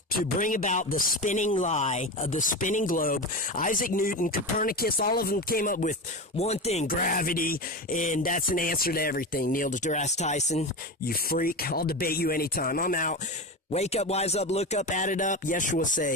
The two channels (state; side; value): normal; both; correlation 0.23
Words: To bring about the spinning lie of the spinning globe. Isaac Newton, Copernicus, all of them came up with one thing: gravity. easy, and that's an answer to everything. Neil deGrasse Tyson, you freak. I'll debate you anytime. I'm out. Wake up, wise up, look up, add it up. Yeshua